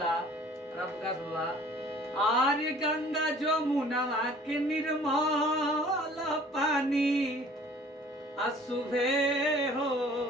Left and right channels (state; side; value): normal; both; correlation 0.51